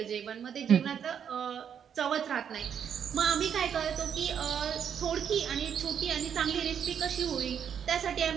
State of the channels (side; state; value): left; quieter; 8.2 dB